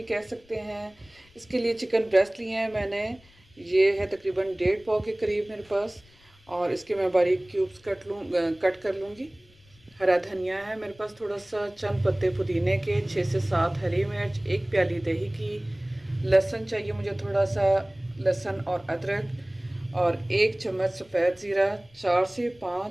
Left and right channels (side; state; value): left; noise; rumble, 28 dB below the sound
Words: कह सकते हैं। इसके लिए चिकन ब्रेस्ट लिए हैं मैंने, ये है तकरीबन 1.5 पाव के करीब मेरे पास, और इसके मैं बारीक क्यूब्स कट कर लूँगी। हरा धनिया है मेरे पास थोड़ा सा, चंद पत्ते पुदीने के, 6 से 7 हरी मिर्च, 1 प्याली दही की, लहसुन चाहिए मुझे थोड़ा सा, लहसुन और अदरक, और 1 चम्मच सफ़ेद ज़ीरा, 4 से